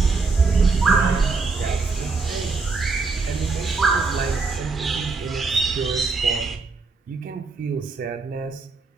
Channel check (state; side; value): quieter; left; 4.2 dB